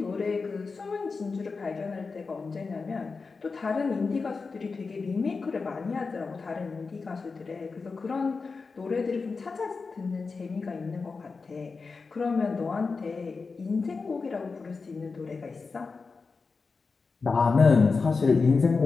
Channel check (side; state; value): right; quieter; 4.5 dB